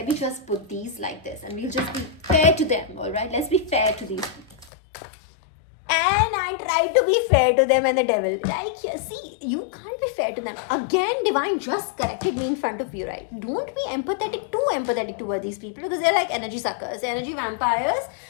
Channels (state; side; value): drops out; right; at 4.7 s